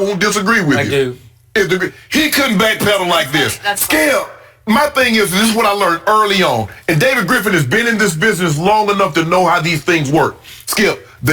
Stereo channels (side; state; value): both; identical; correlation 1.00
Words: disagree with you. I do. He couldn't backpedal like this. Skip, my thing is, this is what I learned early on. And David Griffin has been in this business long enough to know how these things work. Skip,